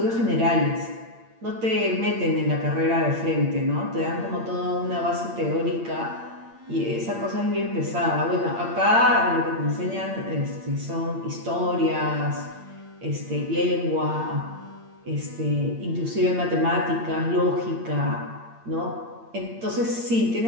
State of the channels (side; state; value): left; late; 8.8 ms